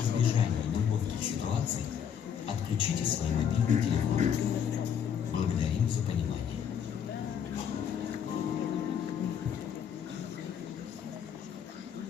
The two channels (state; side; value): quieter; right; 8.2 dB